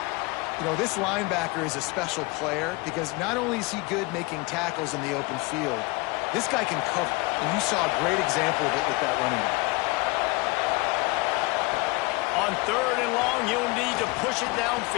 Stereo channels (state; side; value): quieter; right; 25.2 dB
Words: You know, this linebacker is a special player because not only is he good making tackles in the open field, this guy can cover. And you saw a great example of it with that running back. On 3rd and long, he'll need to push it